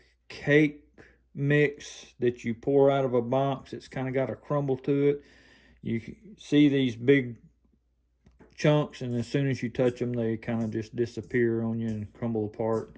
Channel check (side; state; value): both; identical; correlation 1.00